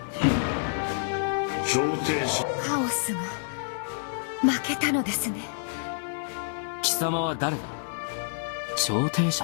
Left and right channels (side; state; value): right; silent; 59 dB below the other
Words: 調停者カオスが負けたのですね。貴様は誰だ？調停者